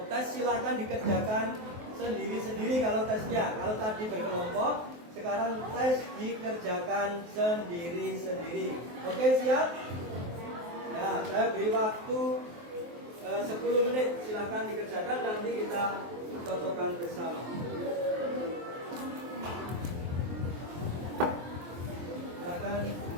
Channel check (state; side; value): late; left; 23 ms